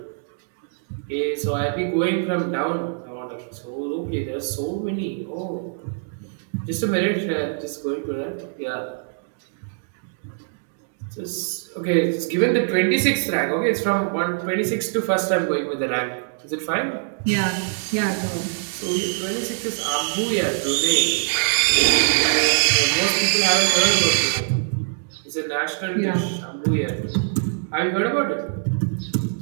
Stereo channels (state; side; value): silent; left; digital silence